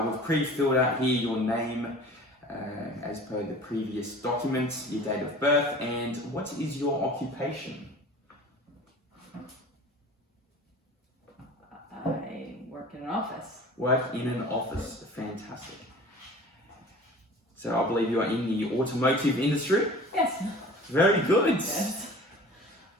we've pre-filled out here your name as as per the previous document, your date of birth, and what is your occupation? I work in an office. Work in an office. Fantastic. So I believe you are in the automotive industry. Yes. Very good. Yes.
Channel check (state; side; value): normal; both; correlation 0.42